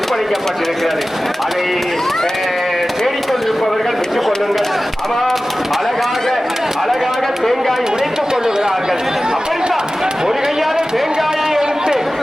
அதை தேடிக்கொண்டிருப்பவர்கள் பெற்றுக் கொள்ளுங்கள். ஆமாம், அழகாக தேங்காய் உடைத்துக் கொள்ளுகிறார்கள். அப்படித்தான் ஒரு கையால தேங்காயை எடுத்து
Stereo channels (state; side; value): normal; both; correlation 0.96